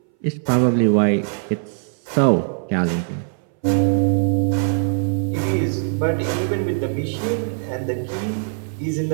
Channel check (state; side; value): silent; left; 61 dB below the other